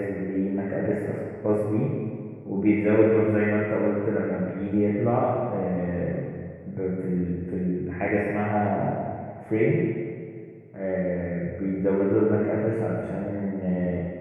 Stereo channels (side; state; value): both; identical; correlation 1.00